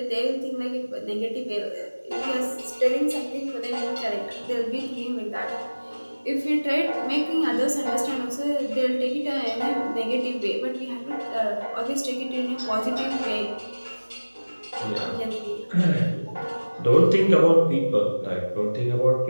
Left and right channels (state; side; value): inverted; both; correlation -1.00